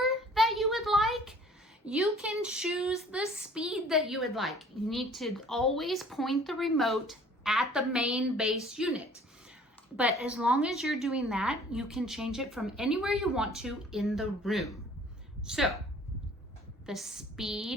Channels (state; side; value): normal; both; correlation 0.52